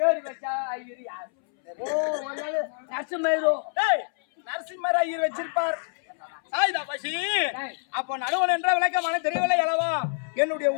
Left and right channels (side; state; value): right; silent; 61 dB below the other